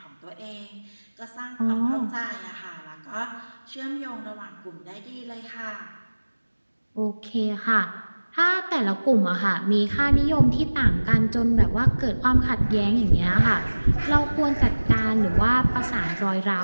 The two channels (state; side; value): inverted; both; correlation -1.00